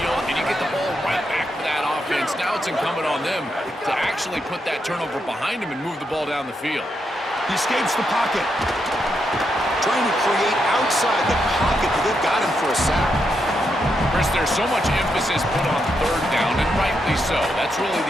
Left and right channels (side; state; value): both; normal; correlation 0.82